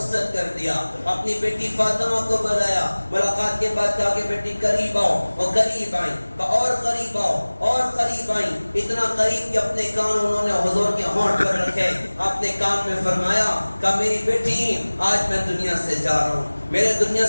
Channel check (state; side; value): inverted; both; correlation -1.00